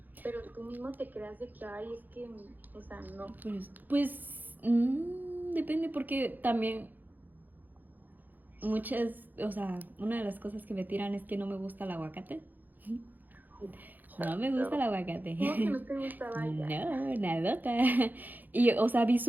Pero tú mismo te creas de que, ay, es que, o sea, no. Pues depende porque también o sea, una de las cosas que me tiran es que no me gusta el aguacate. No me gusta el aguacate. ¿Cómo que no te gustaba ya? No, nadota. Y, o sea,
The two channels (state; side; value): late; left; 0.085 ms